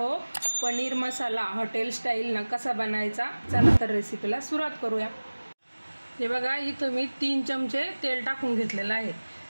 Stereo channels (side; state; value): both; inverted; correlation -1.00